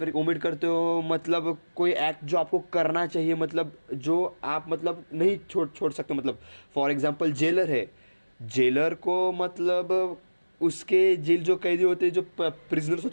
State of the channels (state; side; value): inverted; both; correlation -1.00